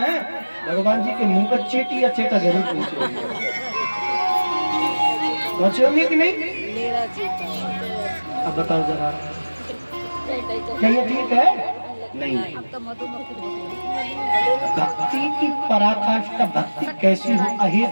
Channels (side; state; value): both; inverted; correlation -1.00